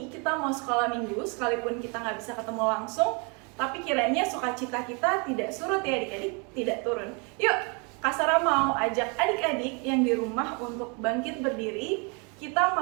kita mau sekolah minggu, sekalipun kita nggak bisa ketemu langsung, tapi kiranya sukacita kita tidak surut ya adik-adik, tidak turun. Yuk, Kak Sarah mau ajak adik-adik yang di rumah untuk bangkit berdiri. Kita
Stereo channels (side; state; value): left; quieter; 33.0 dB